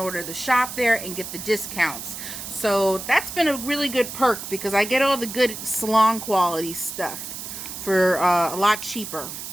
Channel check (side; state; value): right; noise; hiss, 9 dB below the sound